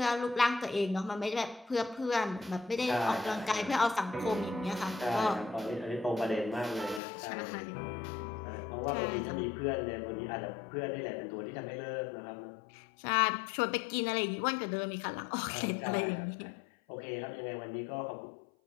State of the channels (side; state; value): right; drops out; at 7.0 s